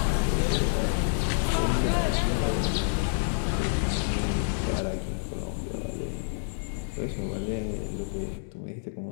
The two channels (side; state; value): right; silent; digital silence